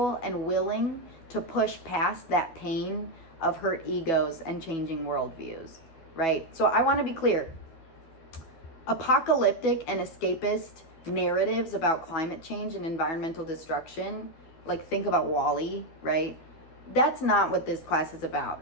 and willing to push past that pain of hurt egos and changing worldviews. right? So I want to be clear. Apocalyptic and escapist narratives about climate change and environmental destruction, like think about WALL-E, right? That's not what this class is about,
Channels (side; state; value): right; late; 12 ms